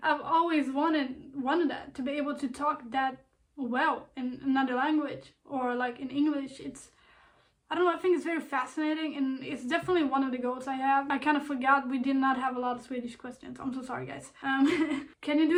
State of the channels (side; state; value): both; identical; correlation 1.00